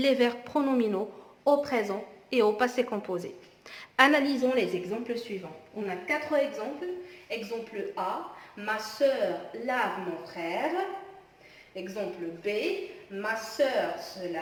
verbes pronominaux au présent et au passé composé. Analysons les exemples suivants. On a 4 exemples. Exemple A, ma sœur lave mon frère. Exemple B, ma sœur se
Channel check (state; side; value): identical; both; correlation 1.00